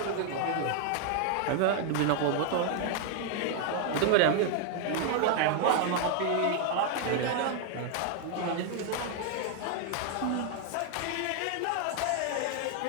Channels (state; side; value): different; both; correlation 0.00